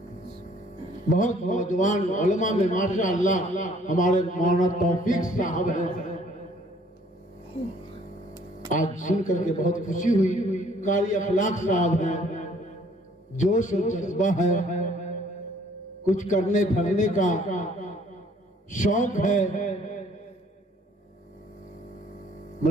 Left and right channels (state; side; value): normal; both; correlation 0.60